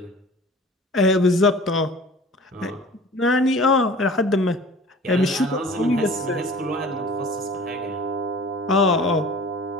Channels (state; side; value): normal; both; correlation 0.44